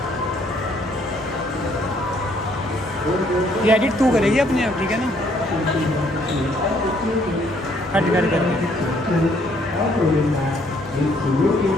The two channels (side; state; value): both; normal; correlation 0.66